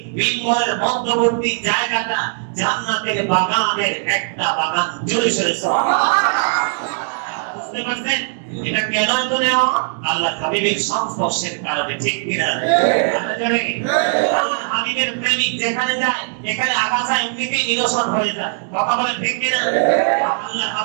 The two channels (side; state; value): left; silent; digital silence